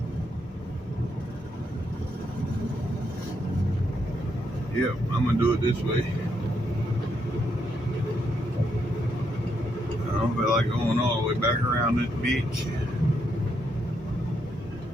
Yep, I'm gonna do it this way. I don't feel like going all the way back around this bitch.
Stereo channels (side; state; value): both; normal; correlation 0.78